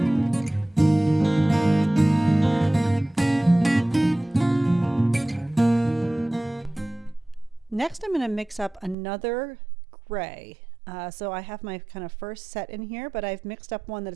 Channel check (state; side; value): drops out; left; at 9.0 s